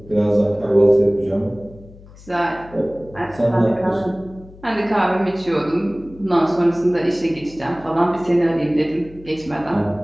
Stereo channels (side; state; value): left; noise; hum, 21 dB below the sound